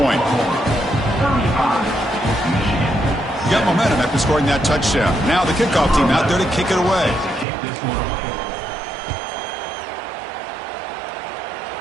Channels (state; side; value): drops out; left; at 7.5 s